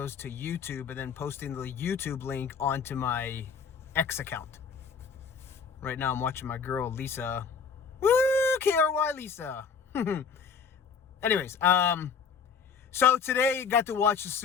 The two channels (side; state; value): right; quieter; 6.0 dB